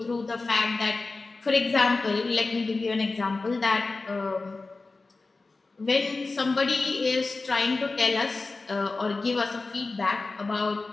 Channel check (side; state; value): right; quieter; 3.6 dB